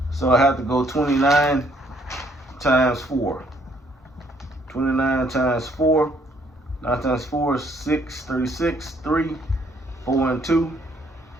So I have to go 29 times 4. 29 times 4. 9 times 4 is 6. 36. 3. 4 and 2.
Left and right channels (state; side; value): normal; both; correlation 0.66